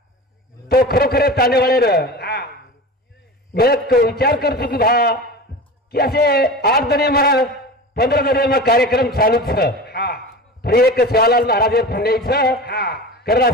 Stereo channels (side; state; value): both; normal; correlation 0.31